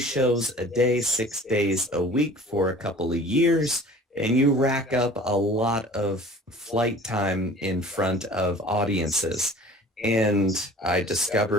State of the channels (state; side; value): normal; both; correlation 0.45